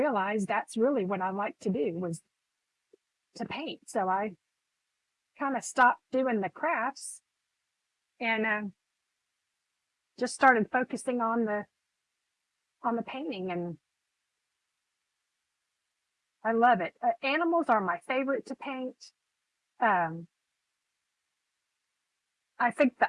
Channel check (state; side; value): identical; both; correlation 1.00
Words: that's really what I like to do, was to paint. So I kind of stopped doing the crafts and just started focusing on the painting, and I love it. Animals are my favorite to paint. Um, I think the